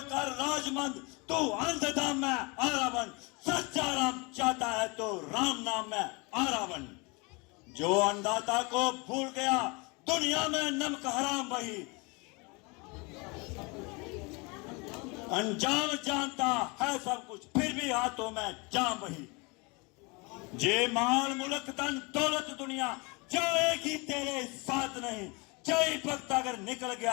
राजमंद तू अंधधाम में आरावन। सच्चा राम चाहता है तो राम नाम में आरावन। जो अन्नदाता को भूल गया दुनिया में नमक हराम वही। अंजाम जानता है सब कुछ फिर भी हाथों में जाम वही। जे माल मुल्क धन दौलत दुनिया जाएगी तेरे साथ नहीं। जय भक्त अगर निकल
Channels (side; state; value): right; quieter; 28.7 dB